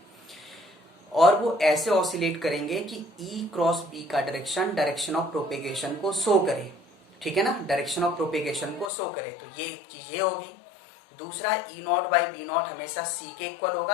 और वो ऐसे ऑसिलेट करेंगे कि E×B का डायरेक्शन ऑफ प्रोपेगेशन को शो करे, ठीक है ना, डायरेक्शन ऑफ प्रोपेगेशन को शो करे। तो ये चीज ये होगी। दूसरा E0/B0 हमेशा C के इक्वल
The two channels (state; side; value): drops out; right; at 8.9 s